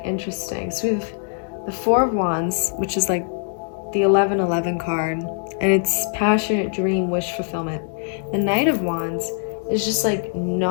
interesting. So we have the 4 of Wands, which is like the 11-11 card, and it's passionate dream, wish fulfillment. The Knight of Wands is just like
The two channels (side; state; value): right; silent; 64 dB below the other